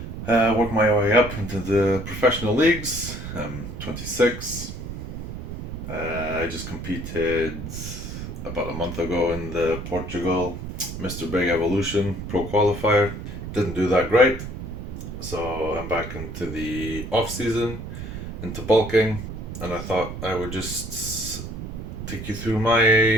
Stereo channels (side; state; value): right; noise; rumble, 8 dB below the sound